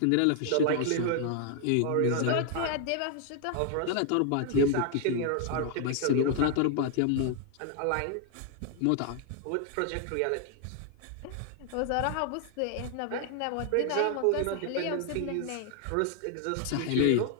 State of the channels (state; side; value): different; both; correlation 0.00